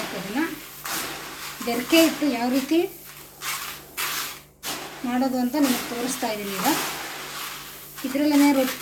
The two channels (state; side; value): identical; both; correlation 1.00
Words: ಅದನ್ನು ಬೆರಕೆ ಹಿಟ್ಟು ಯಾವ ರೀತಿ ಮಾಡೋದು ಅಂತ ನಿಮಗೆ ತೋರಿಸ್ತಾ ಇದ್ದೀನಿ. ಈಗ ಇದರಲ್ಲೇ